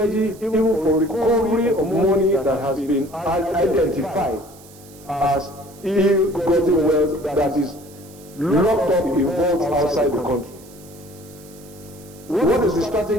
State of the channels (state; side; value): noise; right; hiss, 23 dB below the sound